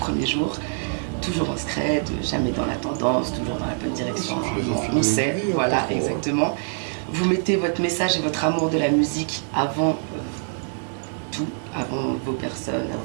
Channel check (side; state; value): left; silent; digital silence